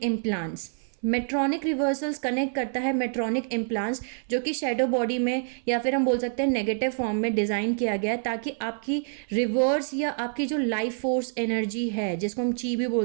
implants. Medtronic reversals connect करता है मेट्रॉनिक इम्प्लांट्स, जो कि शेडो बॉडी में या फिर हम बोल सकते हैं नेगेटिव फॉर्म में डिज़ाइन किया गया है, ताकि आपकी रिवर्स या आपकी जो लाइफ फोर्स एनर्जी है, जिसको हम ची भी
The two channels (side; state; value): left; silent; 58 dB below the other